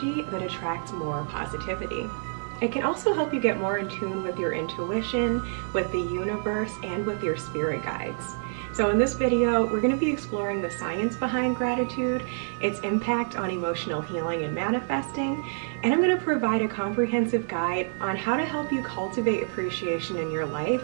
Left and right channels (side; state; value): left; silent; digital silence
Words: that attracts more positivity. It can also help you get more in tune with your intuition, with the universe, and with your spirit guides. So in this video, we're going to be exploring the science behind gratitude, its impact on emotional healing and manifesting, and I'm going to provide a comprehensive guide on how to help you cultivate appreciation in your life